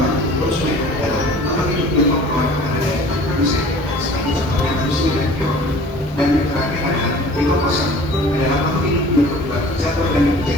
konsumen adalah makhluk hidup yang memperoleh makanan dari produsen, seperti contohnya manusia dan hewan. Dan yang terakhir adalah dekomposan, adalah makhluk hidup yang berubah zat organik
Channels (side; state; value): both; normal; correlation 0.47